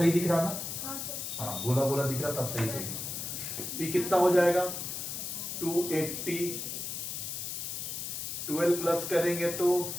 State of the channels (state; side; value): noise; left; hiss, 5 dB below the sound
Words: दिख रहा ना, हाँ गोला गोला दिख रहा, तब सही सही। ये कितना हो जाएगा 280, 12 प्लस करेंगे तो